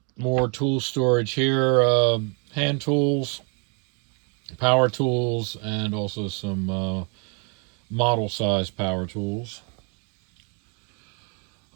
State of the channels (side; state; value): left; quieter; 37.2 dB